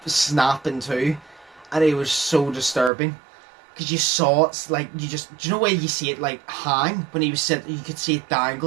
snap in two, and it was so disturbing. Because you saw it, like, do you know where you see it, like, hang? When he was sitting, you could see it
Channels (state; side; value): drops out; left; at 2.9 s